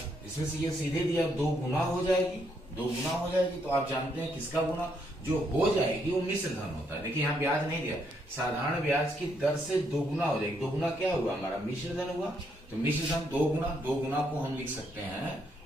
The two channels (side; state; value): both; normal; correlation 0.74